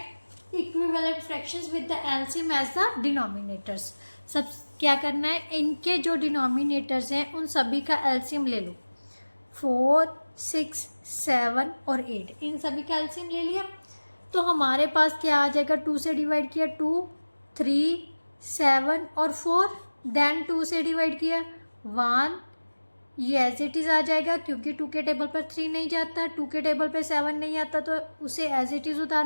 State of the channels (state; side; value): inverted; both; correlation -1.00